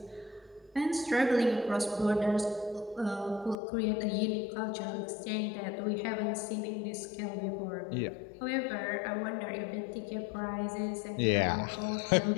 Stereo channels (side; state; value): right; drops out; at 3.6 s